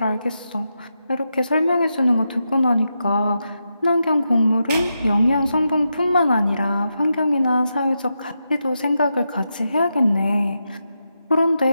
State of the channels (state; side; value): inverted; both; correlation -0.86